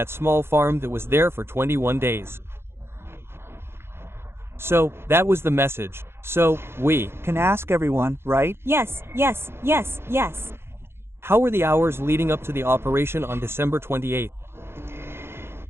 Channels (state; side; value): late; left; 0.12 ms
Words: small farm that was there for 21 days. So, that was the message. So, we can ask everyone, right? Yes, yes, yes, yes. How were the hours leading up to the operation on December 28th?